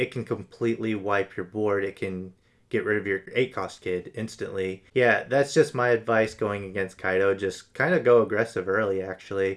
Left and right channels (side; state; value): both; identical; correlation 1.00